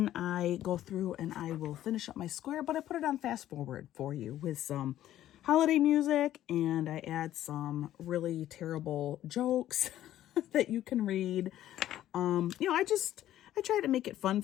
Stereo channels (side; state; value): right; quieter; 12.8 dB